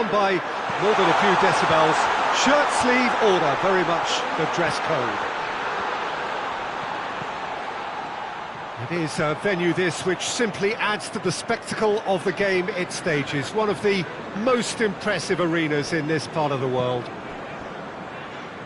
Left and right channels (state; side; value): identical; both; correlation 1.00